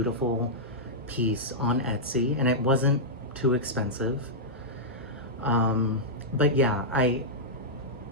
piece on Etsy, and it wasn't too expensive. But yeah, I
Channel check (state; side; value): normal; both; correlation -0.09